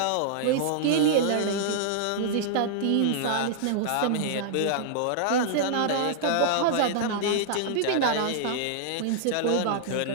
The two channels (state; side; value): different; both; correlation -0.01